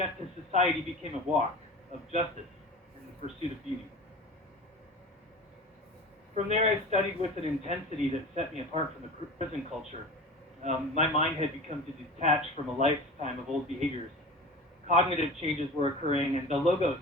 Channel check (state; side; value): normal; both; correlation 0.35